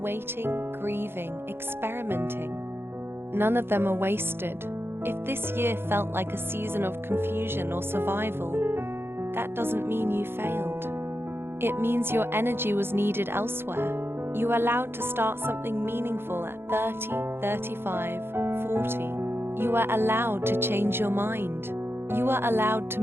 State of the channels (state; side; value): late; left; 0.11 ms